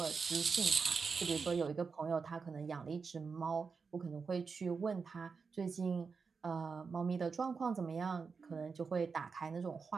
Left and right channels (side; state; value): left; quieter; 5.2 dB